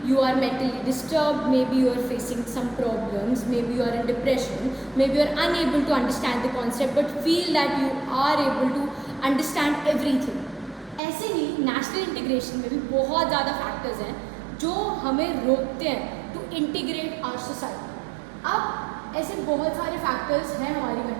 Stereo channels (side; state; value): left; drops out; at 11.0 s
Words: you are mentally disturbed, maybe you are facing some problems, maybe you are in depression, maybe you are unable to understand the concept but feel that you are able to understand everything. ऐसे ही national integration में भी बहुत ज़्यादा factors हैं जो हमें रोकते हैं टू इंटीग्रेट आवर सोसाइटी। अब ऐसे बहुत सारे फैक्टर्स हैं हमारी